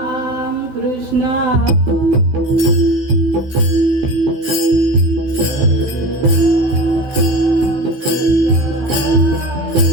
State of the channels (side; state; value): left; late; 15 ms